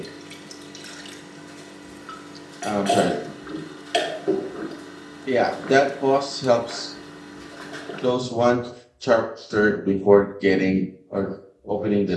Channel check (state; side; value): identical; both; correlation 1.00